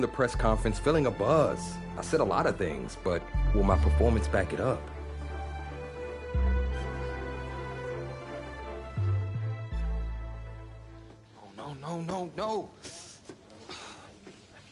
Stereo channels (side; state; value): both; identical; correlation 1.00